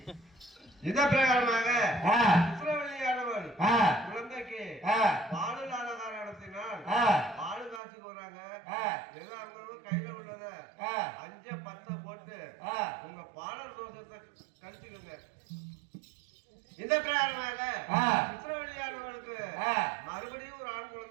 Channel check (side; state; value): left; drops out; at 7.8 s